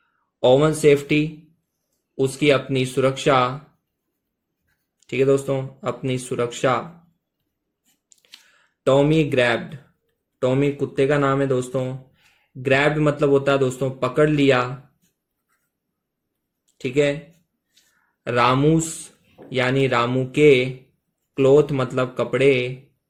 ओवन सेफ्टी उसकी अपनी सुरक्षा। ठीक है दोस्तों, अपनी सुरक्षा। टॉमी ग्रैब्ड, टॉमी कुत्ते का नाम है दोस्तों। ग्रैब मतलब होता है दोस्तों पकड़ लिया, ठीक है। रामूस यानी रामू के, क्लोथ मतलब कपड़े,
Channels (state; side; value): identical; both; correlation 1.00